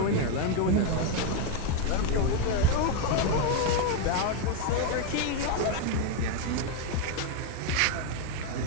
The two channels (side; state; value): both; different; correlation 0.01